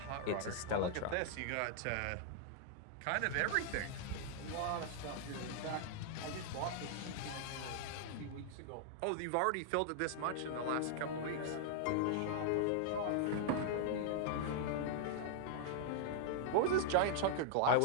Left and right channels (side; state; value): both; different; correlation -0.01